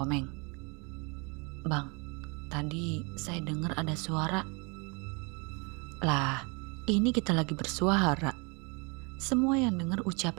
"Bang, tadi saya dengar ada suara." "Lah, ini kita lagi bersuara." Semua yang dengar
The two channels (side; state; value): left; quieter; 31.3 dB